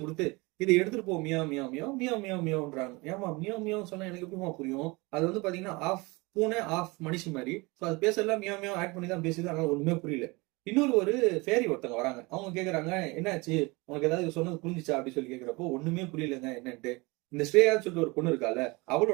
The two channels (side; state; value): left; quieter; 25.2 dB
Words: கொடுத்து இதை எடுத்துட்டு போ, மியா மியா மியா மியா மியா மியான்றாங்க. ஏமா மியா மியா சொன்னா எனக்கு எப்படிமா புரியும்? அது வந்து பாத்தீங்கன்னா ஆஃப் பூனை ஆஃப் மனுஷி மாதிரி. ஸோ அது பேசலாம் மியா மியா ஆட் பண்ணி தான் பேசுது, அதனால ஒண்ணுமே புரியல. இன்னொரு ஒரு ஃபேரி ஒருத்தவங்க வராங்க. அவங்க கேக்குறாங்க என்னாச்சு உனக்கு ஏதாவது சொன்னது புரிஞ்சிச்சா அப்படி சொல்லி கேக்குறப்போ ஒண்ணுமே புரியலங்க என்னன்ட்டு. இந்த ஸ்ரேயான்னு சொல்லிட்டு ஒரு பொண்ணு இருக்கால,